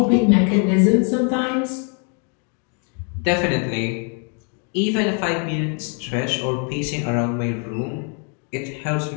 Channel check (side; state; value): right; quieter; 38.6 dB